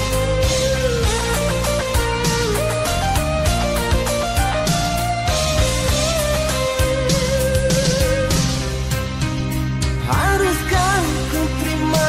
Haruskah ku terima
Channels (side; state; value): both; identical; correlation 1.00